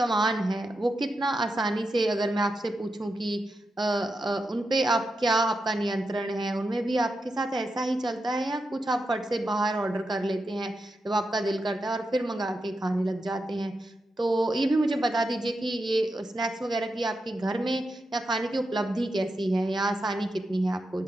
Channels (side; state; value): both; normal; correlation 0.87